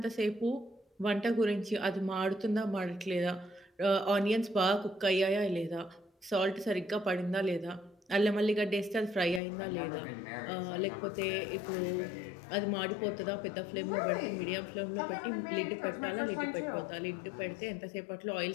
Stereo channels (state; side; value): drops out; right; at 9.4 s